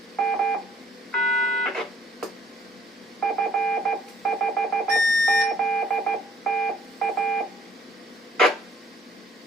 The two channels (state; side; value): normal; both; correlation 0.60